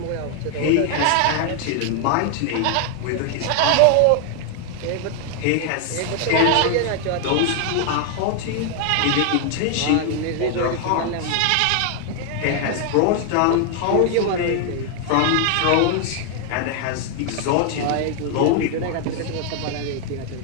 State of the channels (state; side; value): different; both; correlation 0.00